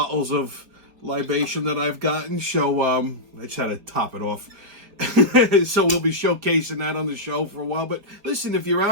of libation that I've gotten. So, I just had to top it off. So we'll be showcasing that on the show for a while. But listen, if you're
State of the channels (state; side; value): late; left; 5.1 ms